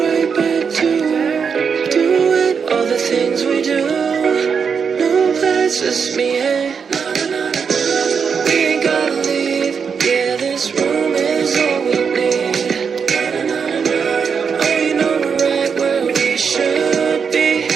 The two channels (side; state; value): left; quieter; 6.3 dB